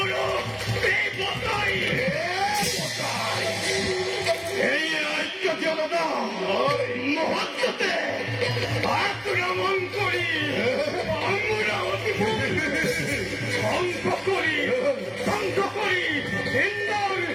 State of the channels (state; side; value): identical; both; correlation 1.00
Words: বেপতাই এই ঐক্য জনতা মহত্বতে আক্রমণ করি অমরাবতীপুর ধ্বংস করি ধ্বংস করি ইন্দোর